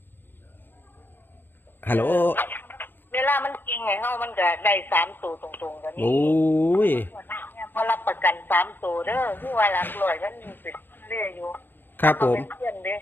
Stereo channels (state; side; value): late; right; 0.096 ms